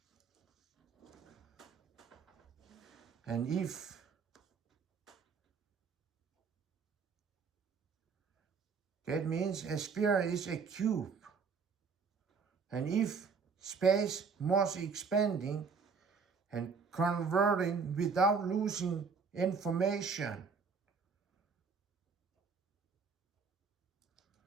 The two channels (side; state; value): left; quieter; 5.4 dB